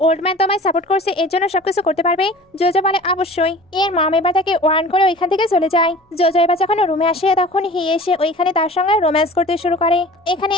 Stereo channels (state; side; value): normal; both; correlation 0.42